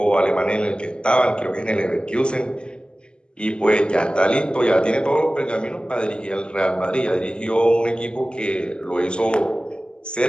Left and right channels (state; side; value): late; right; 0.049 ms